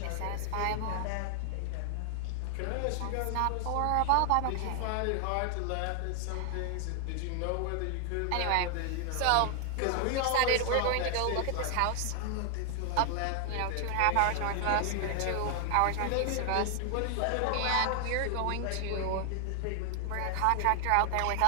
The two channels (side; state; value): both; different; correlation -0.01